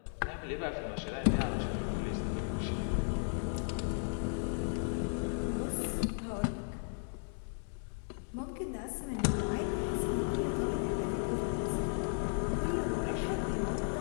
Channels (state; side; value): silent; right; 54 dB below the other